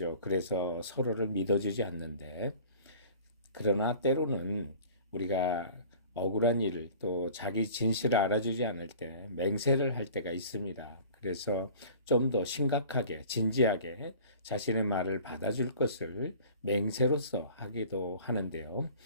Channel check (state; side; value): inverted; both; correlation -0.45